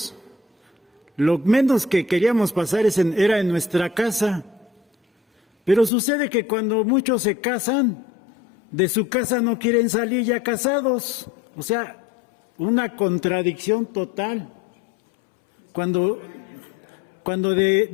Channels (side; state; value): right; drops out; at 5.9 s